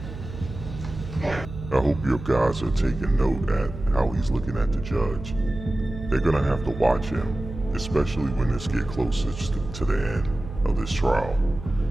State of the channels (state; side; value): noise; right; hum, 11 dB below the sound